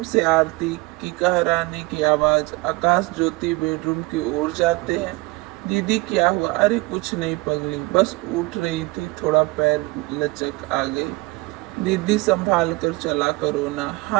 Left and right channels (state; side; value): quieter; left; 23.3 dB